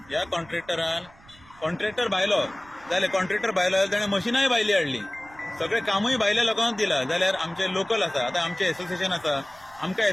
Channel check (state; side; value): noise; right; rumble, 25 dB below the sound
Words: ह्या कॉन्ट्रॅक्टर भायलो जाल्यार कॉन्ट्रॅक्टर भायलो जाल्यार ताणें मशिनाय भायली हाडली. सगळें कामूय भायल्या लोकांक दिलां. जाल्यार आमचे लोकल आसा, आतां आमचें एसोसिएशन आसा, आमकां